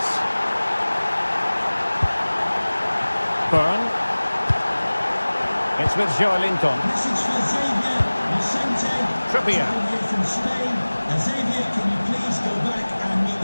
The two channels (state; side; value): inverted; both; correlation -1.00